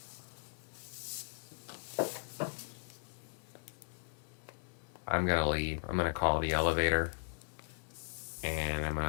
I'm going to leave. I'm going to call the elevator. And I'm going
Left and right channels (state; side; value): silent; right; digital silence